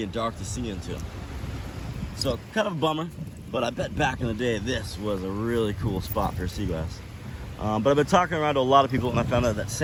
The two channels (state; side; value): identical; both; correlation 1.00